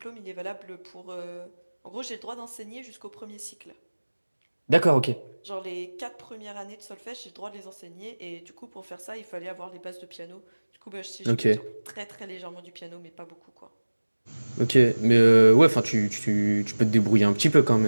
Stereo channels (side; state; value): both; inverted; correlation -1.00